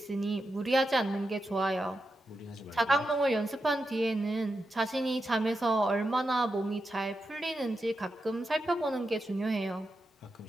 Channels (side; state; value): both; normal; correlation 0.88